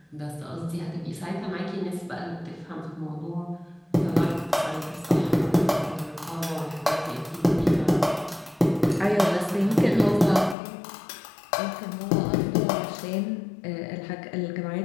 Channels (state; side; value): drops out; right; at 10.6 s